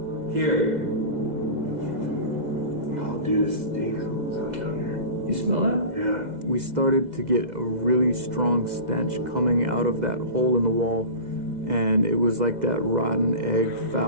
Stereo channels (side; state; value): left; late; 2.0 ms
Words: Here. Oh, dude, it stinks down here. You smell that? Yeah. We started to get a really strong stench coming out of that hole in the wall, and it was like that rotten egg